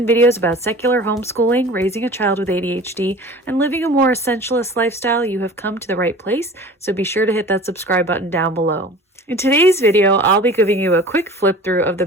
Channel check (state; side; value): normal; both; correlation 0.41